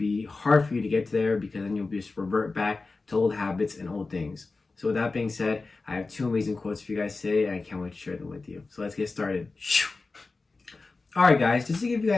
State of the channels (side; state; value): right; quieter; 3.8 dB